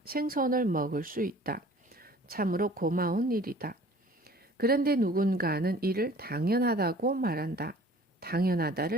생선을 먹을 수 있다. 참으로 고마운 일이다. 그런데 누군가는 이를 당연하다고 말한다.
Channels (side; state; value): both; normal; correlation 0.49